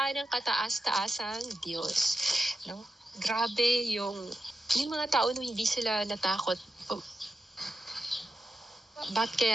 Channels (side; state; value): both; normal; correlation 0.90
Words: ng kataas-taasang Diyos. No? Grabe yung mga tao no, hindi sila natakot. Ba't